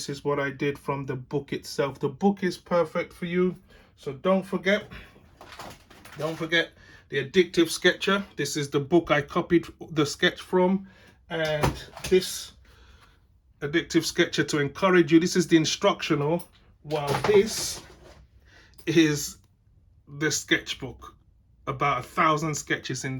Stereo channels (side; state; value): both; identical; correlation 1.00